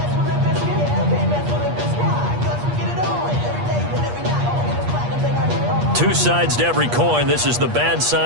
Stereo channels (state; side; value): late; left; 8.4 ms